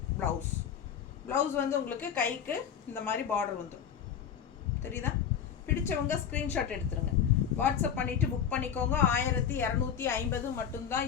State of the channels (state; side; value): quieter; right; 8.2 dB